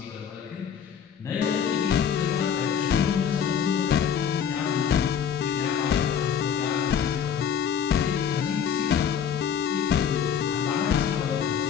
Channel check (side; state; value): right; quieter; 8.1 dB